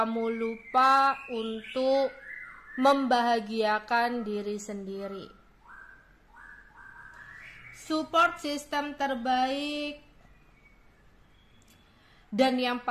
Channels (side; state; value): both; identical; correlation 1.00